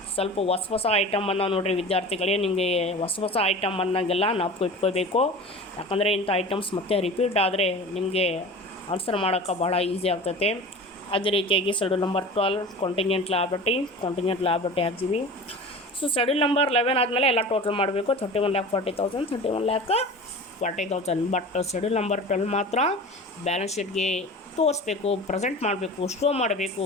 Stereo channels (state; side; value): normal; both; correlation 0.36